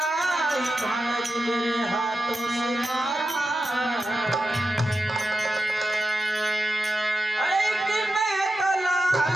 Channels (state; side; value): normal; both; correlation 0.90